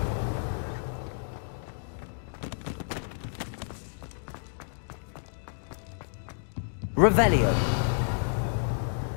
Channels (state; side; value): silent; right; digital silence